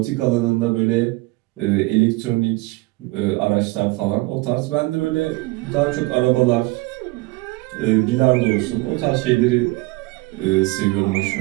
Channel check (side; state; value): left; quieter; 21.9 dB